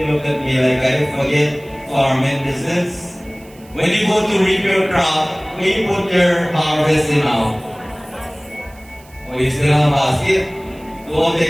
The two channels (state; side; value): noise; right; hiss, 26 dB below the sound